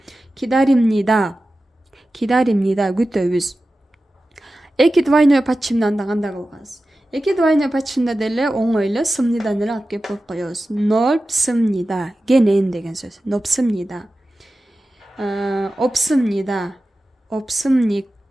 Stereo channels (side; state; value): both; normal; correlation 0.94